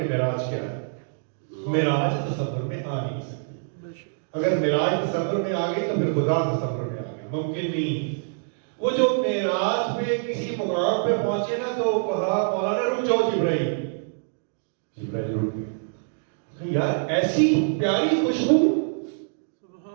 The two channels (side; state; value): left; silent; digital silence